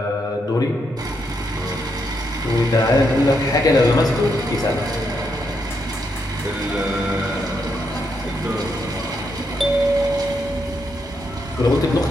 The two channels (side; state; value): both; normal; correlation 0.79